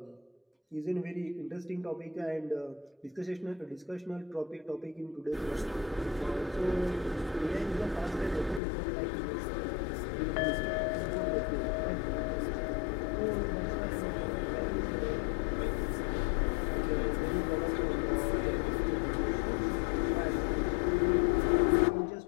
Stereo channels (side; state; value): right; drops out; at 8.6 s